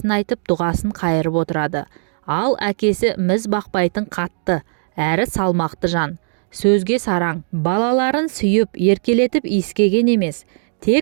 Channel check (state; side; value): silent; left; digital silence